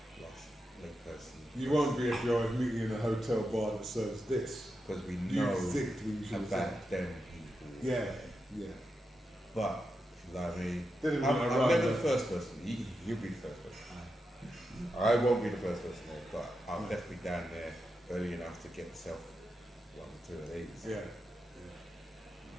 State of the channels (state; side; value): normal; both; correlation 0.87